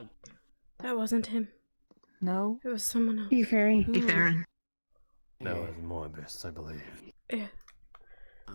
That wasn't him. No? It was someone else. Farron. That was Morbus, I believe. Yeah.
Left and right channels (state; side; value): inverted; both; correlation -1.00